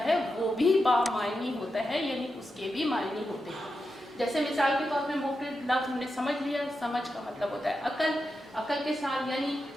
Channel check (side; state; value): both; normal; correlation 0.88